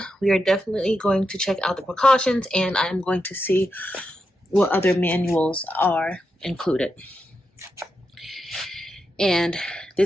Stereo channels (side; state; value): both; normal; correlation 0.86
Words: we are definitely going to check out the precautions, and I'm going to see what other manuals are included. And